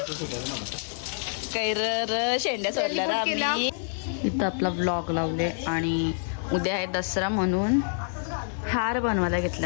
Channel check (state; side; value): silent; right; digital silence